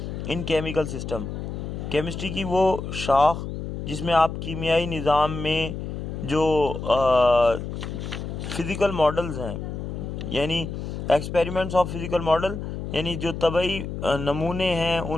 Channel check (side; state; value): left; noise; hum, 6 dB below the sound